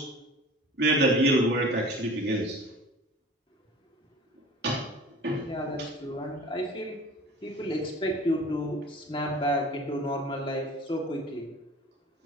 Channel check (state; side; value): normal; both; correlation 0.42